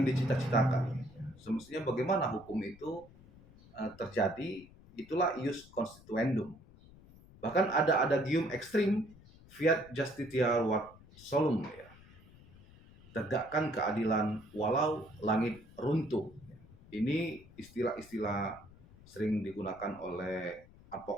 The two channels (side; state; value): left; noise; rumble, 23 dB below the sound